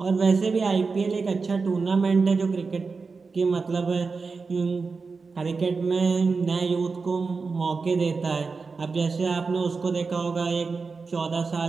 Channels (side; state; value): left; quieter; 4.5 dB